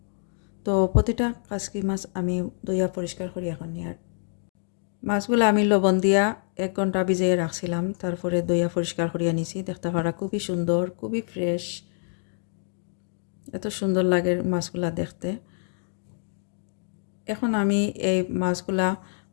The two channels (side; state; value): right; silent; 61 dB below the other